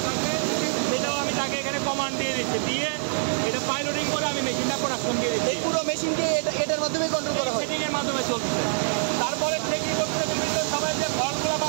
থাকবে সেটাও আমি তাকে এখানে কমান্ড দিয়ে দিচ্ছি, দিয়ে এটা পাইলটিং করে আমি মেশিনটা প্রোডাকশন দিয়ে দিচ্ছি। এই পুরো মেশিনকে এটার মাধ্যমে কন্ট্রোল করা হয়, সেটিংয়ের মাধ্যমে চলছে। তারপরে সে কী করছে, বিভিন্ন সময় যে ফলগুলো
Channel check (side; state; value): left; silent; digital silence